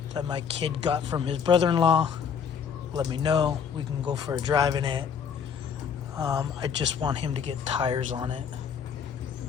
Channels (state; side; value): quieter; right; 7.0 dB